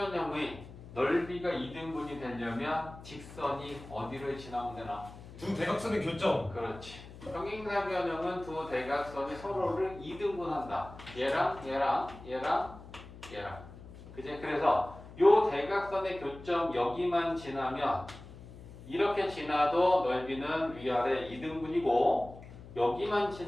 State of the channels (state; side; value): noise; left; hum, 16 dB below the sound